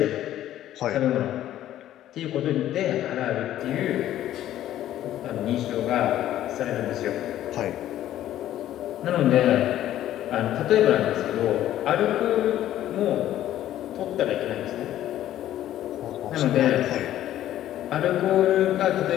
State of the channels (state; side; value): quieter; right; 12.6 dB